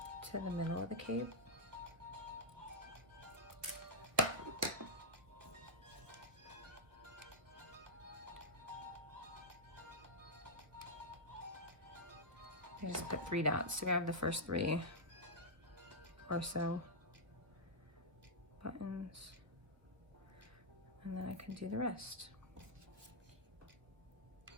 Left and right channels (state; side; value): late; left; 1.1 ms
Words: to the middle of the cape. I just put 3 dots to grab the first 3 or so buttons, and then I can do the rest.